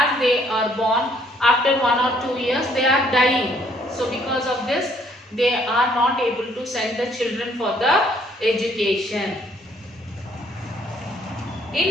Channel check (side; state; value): both; normal; correlation 0.65